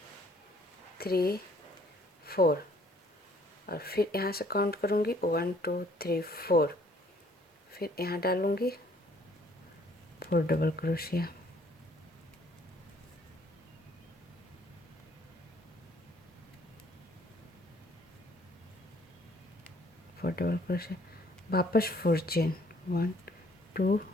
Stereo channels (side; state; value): both; normal; correlation 0.60